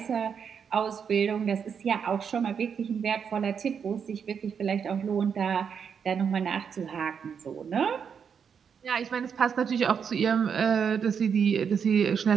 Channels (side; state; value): left; quieter; 7.0 dB